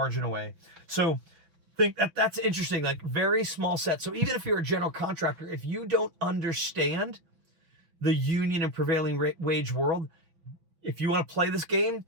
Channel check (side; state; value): left; late; 6.0 ms